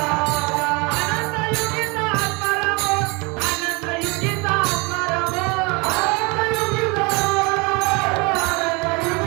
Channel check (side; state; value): left; quieter; 28.3 dB